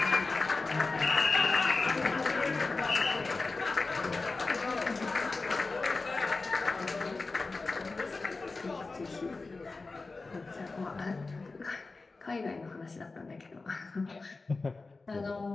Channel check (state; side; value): quieter; right; 3.7 dB